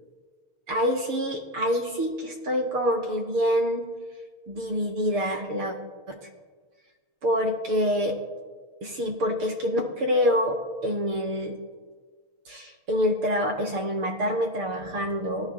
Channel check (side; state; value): left; late; 6.7 ms